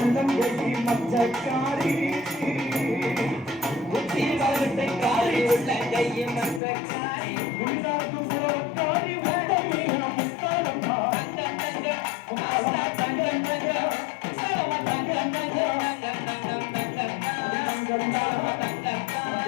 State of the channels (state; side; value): drops out; right; at 6.6 s